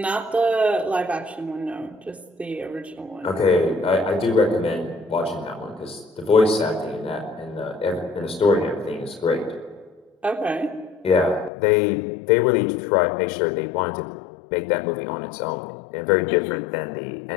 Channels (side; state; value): right; drops out; at 11.5 s